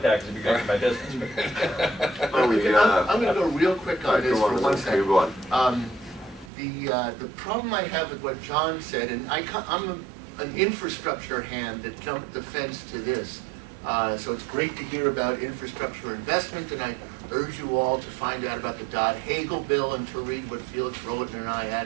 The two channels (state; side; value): drops out; left; at 6.5 s